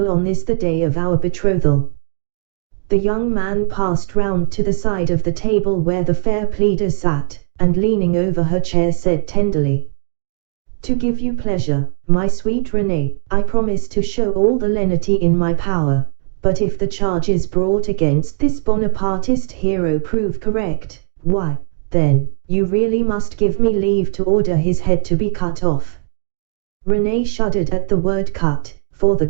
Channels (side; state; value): left; silent; 68 dB below the other